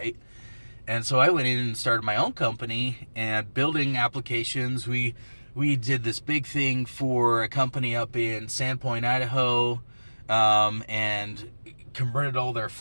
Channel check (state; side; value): inverted; both; correlation -1.00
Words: And so I went in and started my own company and building applications. We did this big thing for a company up in Sandpoint, Idaho, and converted all their